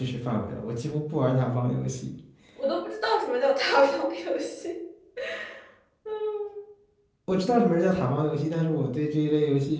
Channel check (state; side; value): identical; both; correlation 1.00